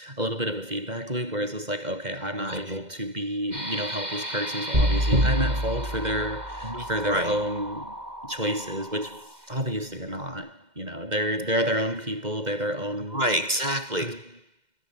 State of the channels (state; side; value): late; left; 2.1 ms